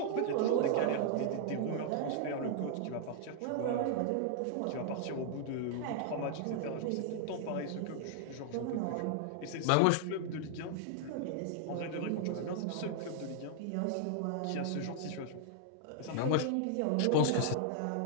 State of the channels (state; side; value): different; both; correlation -0.01